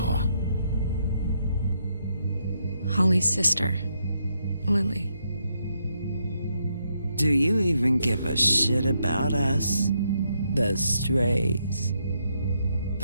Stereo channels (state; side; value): inverted; both; correlation -0.78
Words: Holly's sister, Lily. Do you even give a shit about us? The strays.